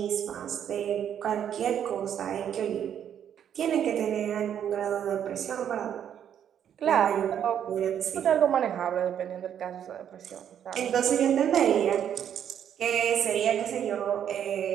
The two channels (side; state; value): left; quieter; 9.3 dB